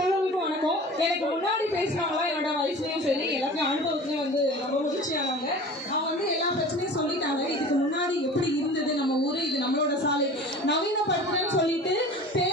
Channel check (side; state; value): both; normal; correlation 0.39